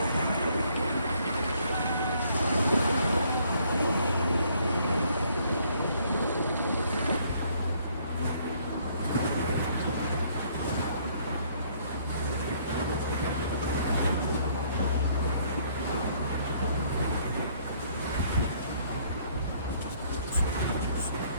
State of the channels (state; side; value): inverted; both; correlation -0.64